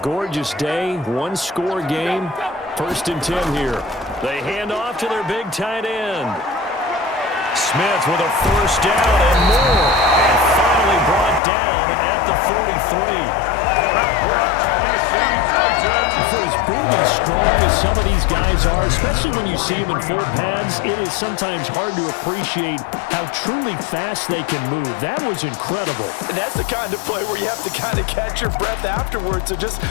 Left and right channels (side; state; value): right; drops out; at 11.4 s